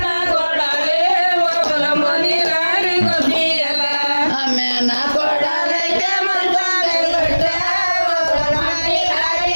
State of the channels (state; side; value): inverted; both; correlation -1.00